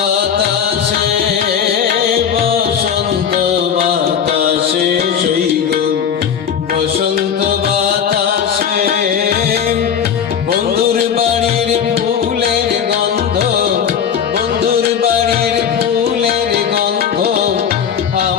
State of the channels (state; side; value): quieter; right; 7.9 dB